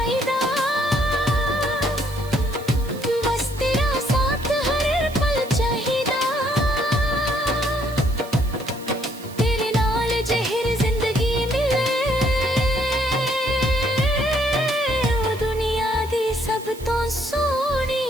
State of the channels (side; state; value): right; noise; hiss, 19 dB below the sound